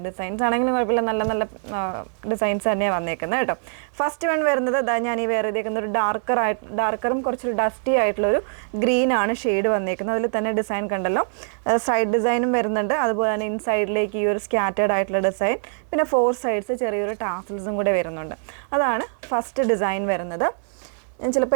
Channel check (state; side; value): silent; left; 63 dB below the other